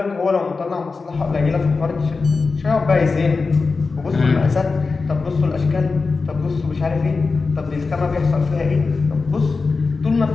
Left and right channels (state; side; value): quieter; right; 4.3 dB